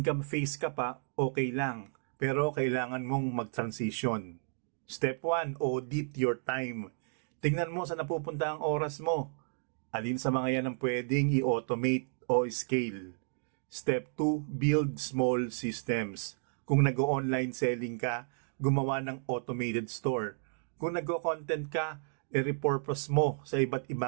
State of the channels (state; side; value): silent; left; digital silence